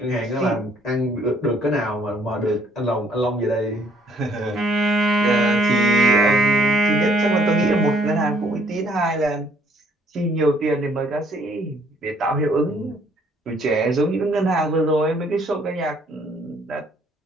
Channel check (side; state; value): both; normal; correlation 0.62